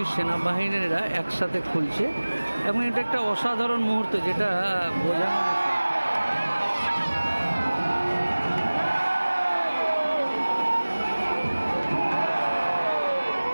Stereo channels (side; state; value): both; inverted; correlation -1.00